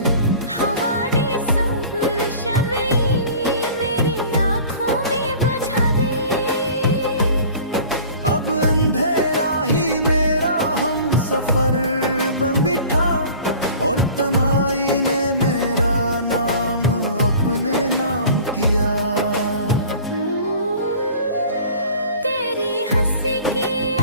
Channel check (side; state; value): both; inverted; correlation -0.44